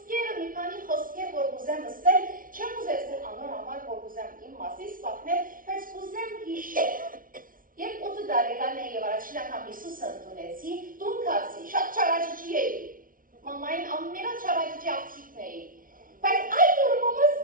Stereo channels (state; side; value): late; left; 0.40 ms